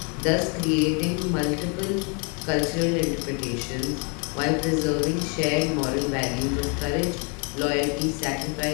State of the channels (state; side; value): quieter; right; 35.4 dB